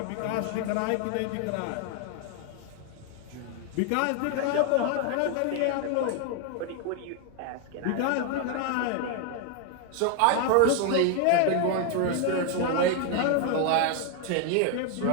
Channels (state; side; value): different; both; correlation 0.00